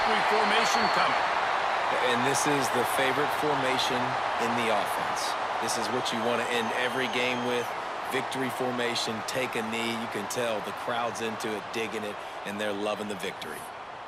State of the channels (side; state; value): both; identical; correlation 1.00